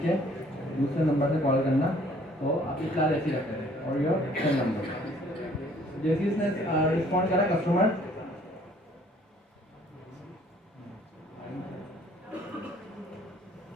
है, दूसरे नंबर से कॉल करना, तो आप इस क्लास ऐसी रखते हैं और योर सेल नंबर। जैसे इसने रिस्पॉन्ड करा कस्टमर,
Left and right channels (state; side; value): normal; both; correlation 0.59